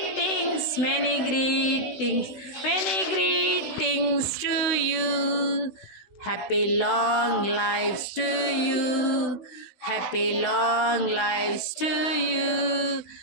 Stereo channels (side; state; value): right; late; 16 ms